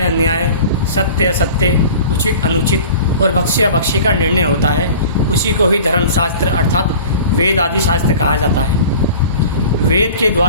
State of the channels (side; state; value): both; inverted; correlation -0.41